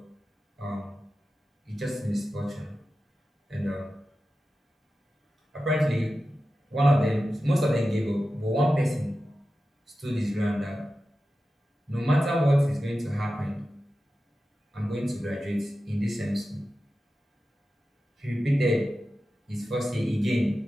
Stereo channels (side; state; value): both; normal; correlation 0.93